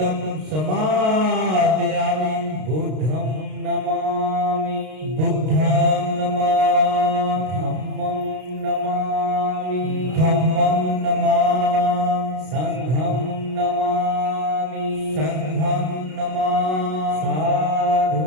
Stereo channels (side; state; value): left; late; 32 ms